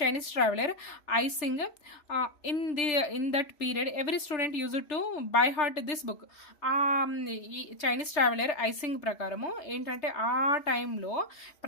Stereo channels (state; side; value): late; right; 3.3 ms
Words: Chinese traveller icing, in that period every student use to buy heart this book. ఈ చైనీస్ ట్రావెలర్ ఐసింగ్ ప్రకారము ఏంటంటే ఆ టైంలో